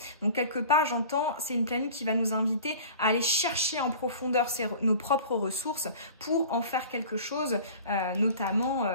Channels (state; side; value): inverted; both; correlation -0.41